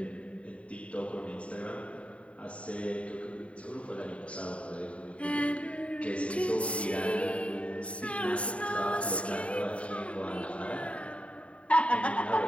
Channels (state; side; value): late; right; 0.063 ms